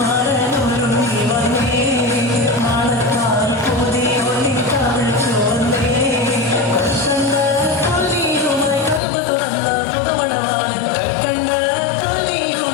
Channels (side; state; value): right; drops out; at 9.0 s